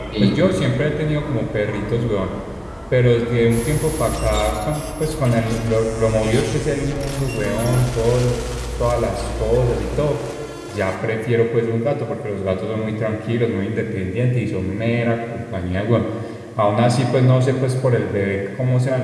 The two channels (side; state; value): both; identical; correlation 1.00